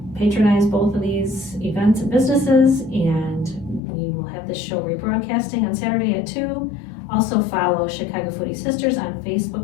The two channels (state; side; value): drops out; right; at 3.8 s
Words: patronize both of these events and businesses, and we will have this show rebroadcasting on Saturday at 2. Also follow Chicago Foodie Sisters on